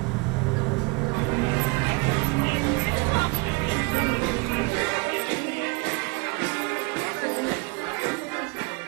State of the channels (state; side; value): quieter; left; 27.5 dB